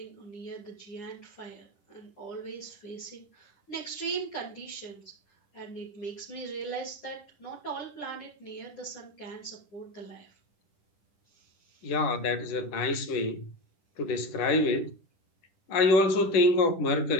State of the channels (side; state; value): right; late; 10 ms